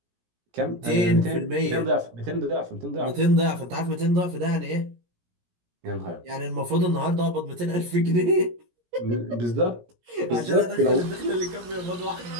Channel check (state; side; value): late; left; 17 ms